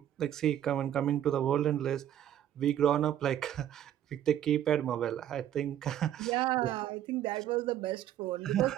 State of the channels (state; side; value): quieter; left; 11.1 dB